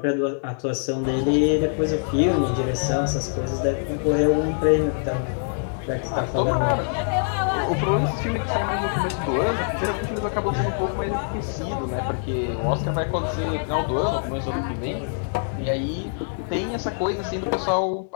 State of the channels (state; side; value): silent; right; digital silence